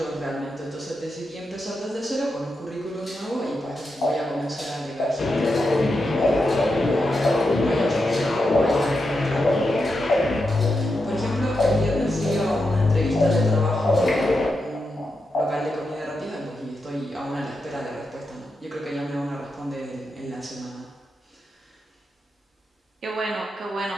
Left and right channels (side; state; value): both; normal; correlation 0.87